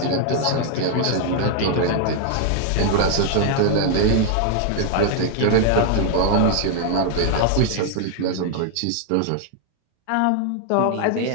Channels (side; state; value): both; different; correlation 0.00